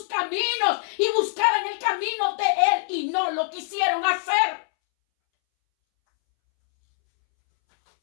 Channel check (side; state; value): right; silent; 63 dB below the other